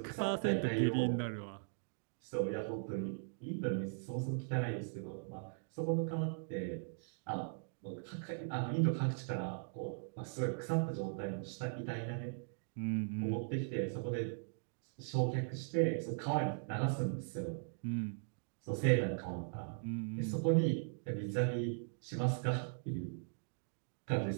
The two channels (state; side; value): silent; left; digital silence